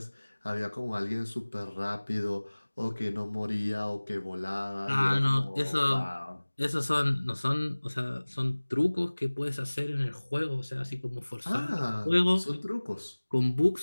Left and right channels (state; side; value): inverted; both; correlation -1.00